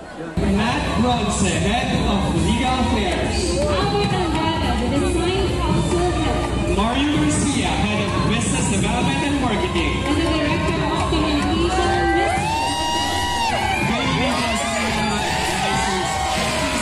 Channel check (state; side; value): identical; both; correlation 1.00